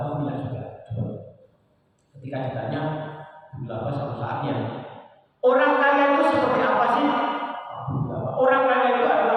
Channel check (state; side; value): identical; both; correlation 1.00